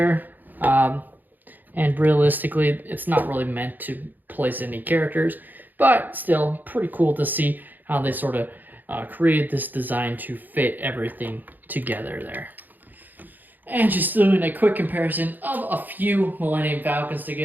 And realistically, it's not really meant to place any characters, but still pretty cool to see how they sort of created this design to fit everything together there. And just doing a quick comparison of a few Millennium Falcons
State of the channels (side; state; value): left; late; 0.086 ms